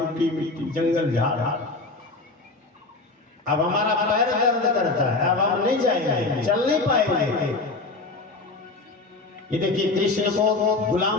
मिट्टी जंगल झाड़, अब हमारा पैर दर्द करता है, अब हम नहीं जाएंगे, चल नहीं पाएंगे। ये देखिए कृष्ण को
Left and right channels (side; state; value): right; quieter; 3.5 dB